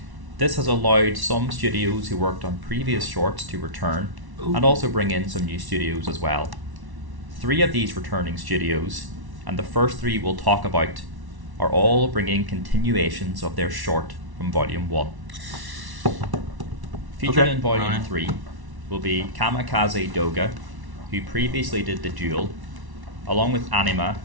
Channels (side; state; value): left; late; 1.1 ms